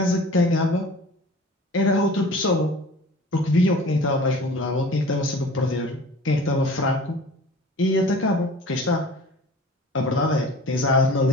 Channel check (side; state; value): both; normal; correlation 0.43